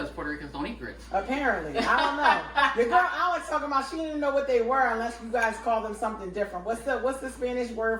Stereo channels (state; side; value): identical; both; correlation 1.00